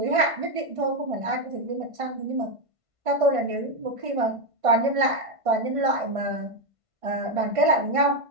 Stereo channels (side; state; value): left; late; 1.5 ms